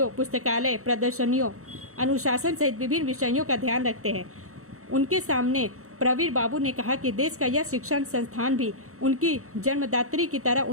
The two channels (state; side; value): late; left; 0.64 ms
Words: पुस्तकालय प्रदर्शनियों, अनुशासन सहित विभिन्न विषयों का ध्यान रखते हैं। उनके सामने प्रवीर बाबू ने कहा कि देश का यह शिक्षण संस्थान भी उनकी जन्मदात्री की तरह